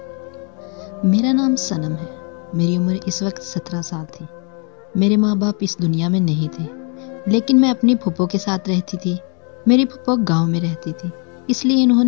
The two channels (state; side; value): quieter; right; 36.7 dB